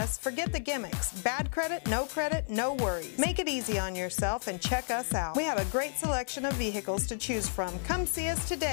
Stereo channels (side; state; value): right; silent; 57 dB below the other